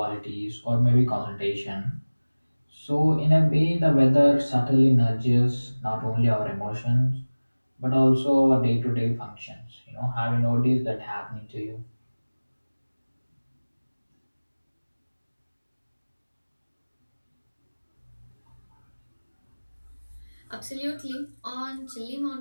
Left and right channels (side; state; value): both; inverted; correlation -1.00